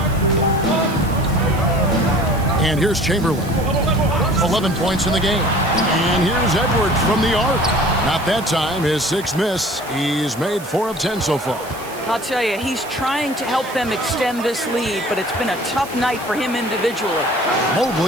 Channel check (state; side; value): noise; right; hiss, 17 dB below the sound